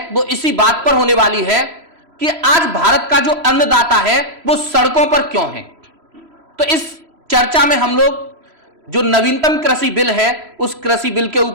वो इसी बात पर होने वाली है कि आज भारत का जो अन्नदाता है वो सड़कों पर क्यों है। तो इस चर्चा में हम लोग जो नवीनतम कृषि बिल है उस कृषि बिल के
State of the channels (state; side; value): late; left; 3.0 ms